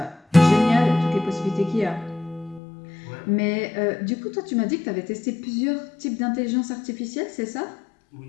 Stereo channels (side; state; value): right; drops out; at 2.6 s